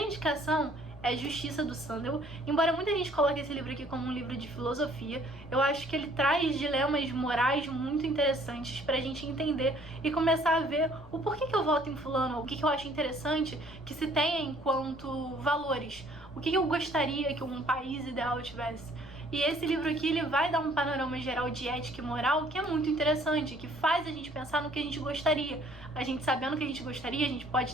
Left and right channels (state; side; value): noise; left; rumble, 23 dB below the sound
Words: indicação é Justiça, do Sandel. Embora muita gente coloque esse livro aqui como um livro de filosofia, eu acho que ele traz dilemas morais muito interessantes pra gente entender e começar a ver o porquê que eu voto em fulano, o que eu acho interessante que se tenha enquanto valores, o que eu gostaria que um país ideal tivesse. E esse livro aqui, ele vai dar um panorama geral de ética e moral que é muito interessante, que faz a gente pensar no que a gente gostaria. A gente sabendo o que a gente gostaria, a gente